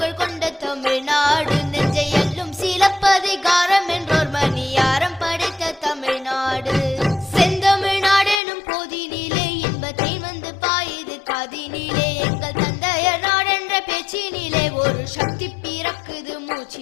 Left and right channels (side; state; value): right; drops out; at 8.4 s